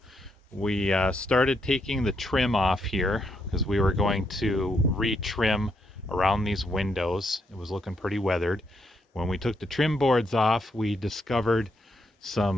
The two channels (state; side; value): normal; both; correlation 0.77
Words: we started taking the trim off here because we were going to re-trim around these windows. It was looking pretty weathered. When we took the trim boards off, we discovered